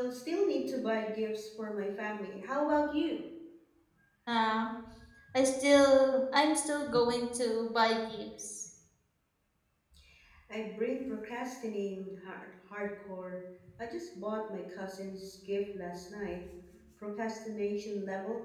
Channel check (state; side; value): identical; both; correlation 1.00